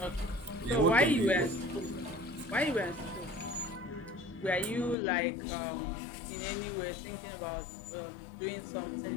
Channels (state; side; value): drops out; right; at 5.0 s